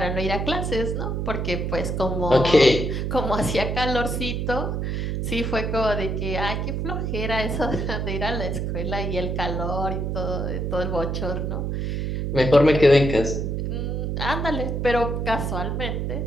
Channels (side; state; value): right; noise; hum, 1 dB below the sound